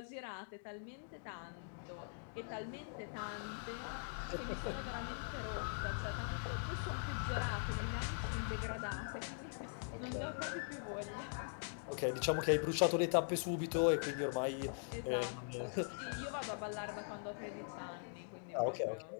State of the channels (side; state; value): right; silent; digital silence